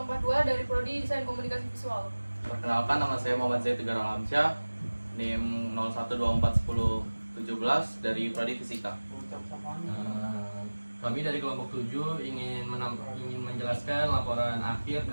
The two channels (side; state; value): both; inverted; correlation -1.00